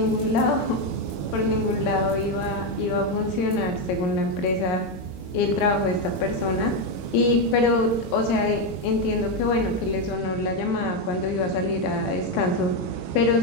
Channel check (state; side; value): late; right; 22 ms